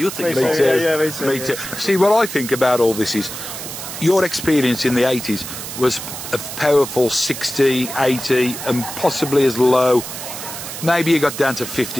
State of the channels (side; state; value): right; noise; hiss, 9 dB below the sound